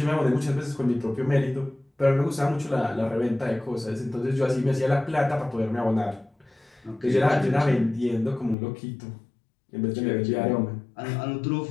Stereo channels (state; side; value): drops out; right; at 8.6 s